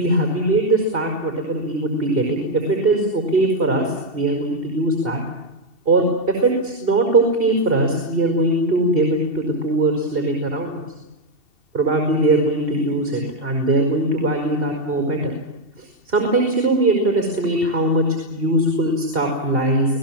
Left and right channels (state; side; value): late; left; 2.7 ms